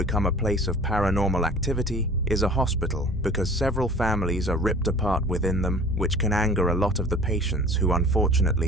a place of paranormal activity is a hospital, because several families are ripped apart within them, which can anger a lot of the patients who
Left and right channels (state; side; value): normal; both; correlation 0.45